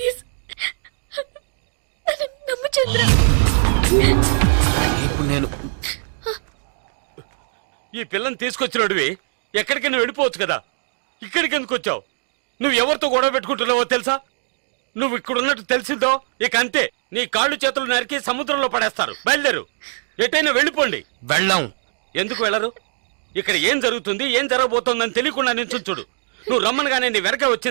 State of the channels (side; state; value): left; silent; digital silence